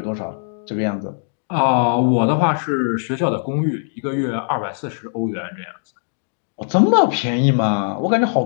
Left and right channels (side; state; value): right; silent; digital silence